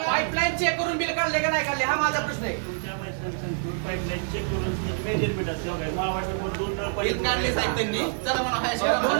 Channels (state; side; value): silent; left; digital silence